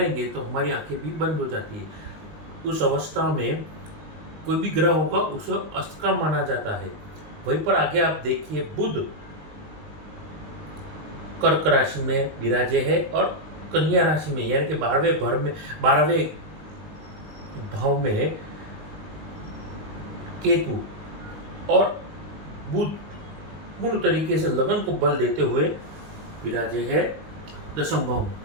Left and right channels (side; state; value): left; late; 19 ms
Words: तो हमारी आंखें भी बंद हो जाती है। उस अवस्था में कोई भी ग्रह होगा उसे अस्त का माना जाता है। वहीं पर आगे आप देखिए बुध कर्क राशि में विराजे है और कन्या राशि में, यानी कि 12वें भाव में केतु और बुध पूर्ण तरीके से लगन को बल देते हुए विराजे है दशम भाव में।